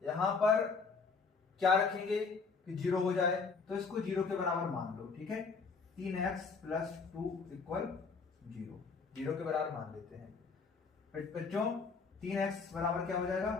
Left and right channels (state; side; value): quieter; right; 4.9 dB